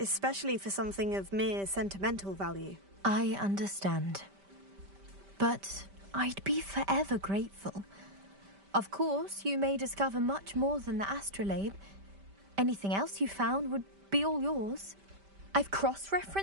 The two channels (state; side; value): late; left; 5.1 ms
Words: for something of mere sentimental value. I understand. But I'd be forever grateful. Of course, you may discover much more than the astrolabe. Anything else you found would be all yours. I've